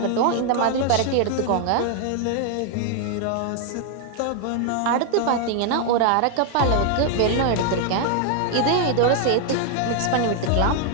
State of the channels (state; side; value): different; both; correlation 0.00